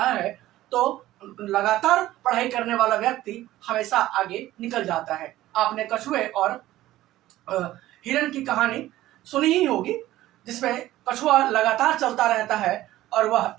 है तो लगातार पढ़ाई करने वाला व्यक्ति हमेशा आगे निकल जाता है। आपने कछुए और हिरण की कहानी सुनी ही होगी, जिसमें कछुआ लगातार चलता रहता है और वह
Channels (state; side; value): quieter; left; 15.3 dB